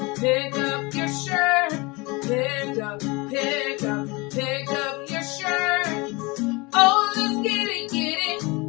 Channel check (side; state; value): right; quieter; 25.7 dB